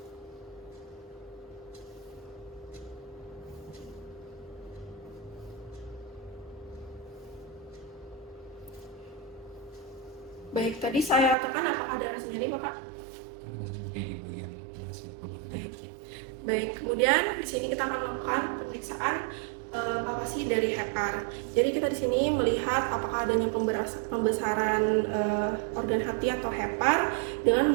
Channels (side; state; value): left; drops out; at 11.4 s